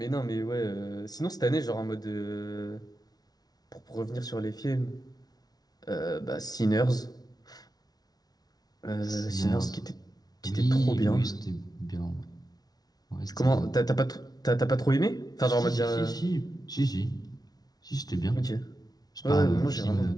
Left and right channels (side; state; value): right; late; 0.19 ms